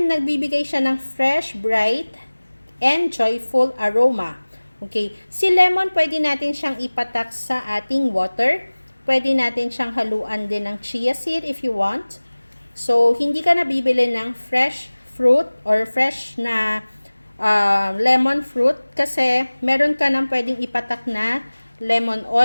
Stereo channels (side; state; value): both; inverted; correlation -1.00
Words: nagbibigay siya ng fresh, bright, and joyful aroma. Okay? Si lemon, pwede natin siyang ipatak sa ating water. Pwede natin siyang haluan din ng chia seed if you want. So, hindi ka na bibili ng fresh fruit or fresh na lemon fruit kasi meron ka nang pwedeng ipatak na lemon